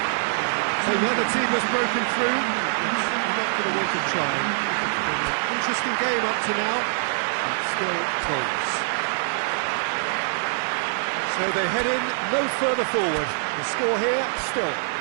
So the other team has broken through, but certainly not going to want to try. It's been an interesting game up to now, but still goals. So they head in no further forward. The score here, still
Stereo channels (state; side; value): silent; left; 59 dB below the other